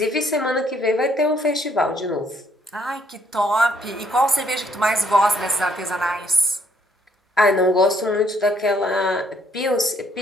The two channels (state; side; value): normal; both; correlation 0.67